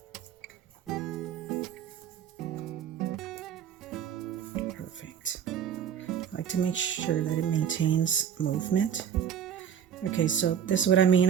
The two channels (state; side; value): quieter; left; 8.6 dB